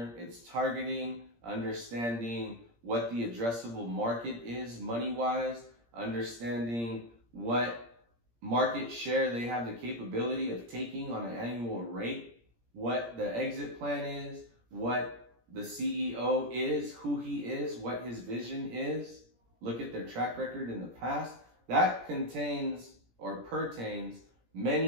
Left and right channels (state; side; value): late; left; 17 ms